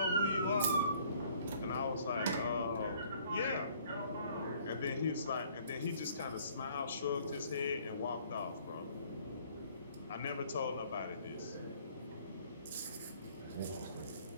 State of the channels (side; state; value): both; inverted; correlation -0.59